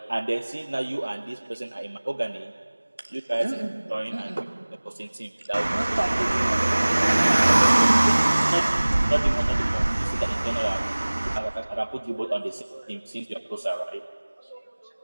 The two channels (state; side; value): inverted; both; correlation -1.00